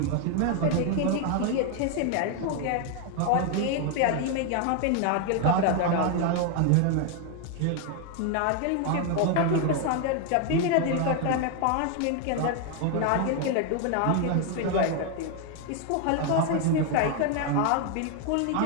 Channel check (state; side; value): different; both; correlation 0.01